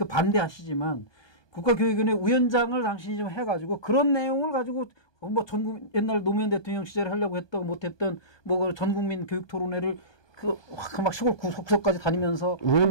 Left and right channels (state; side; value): late; right; 1.2 ms